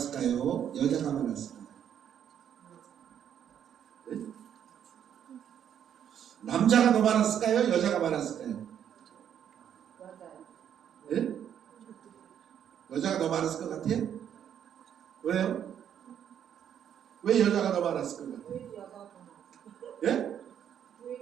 여자가 많았을까요? 네? 남자가 더 많았을까요? 여자가 많았을까요? 네? 여자가 더 많았을 것 같아요? 왜요? 왜 여자가 더 많았을 것 같아요? 예?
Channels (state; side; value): quieter; left; 9.3 dB